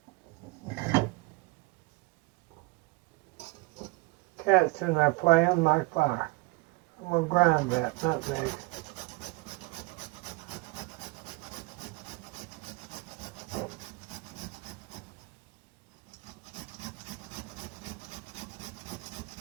Cat's in there playing like fire. I'm going to grind that nutmeg.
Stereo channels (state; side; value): quieter; left; 24.6 dB